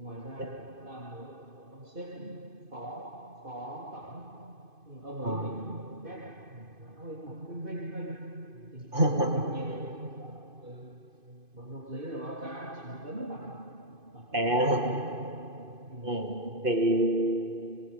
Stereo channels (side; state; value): left; late; 2.5 ms